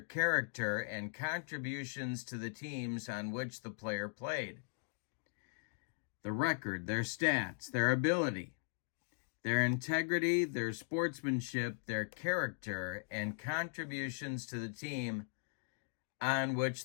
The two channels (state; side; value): silent; right; digital silence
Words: character, and contributions to the teams on which the player played. The record, their stats, their ability, their integrity, their sportsmanship, their character, and contributions to the team on which